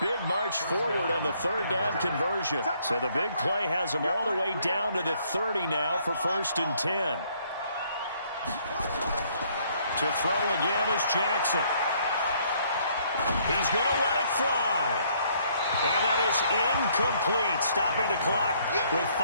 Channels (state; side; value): inverted; both; correlation -0.66